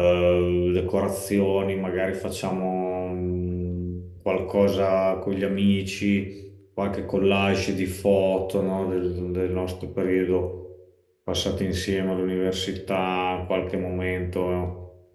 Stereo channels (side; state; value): both; identical; correlation 1.00